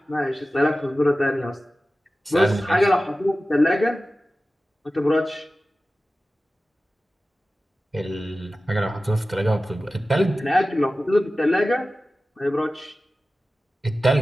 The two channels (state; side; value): normal; both; correlation 0.95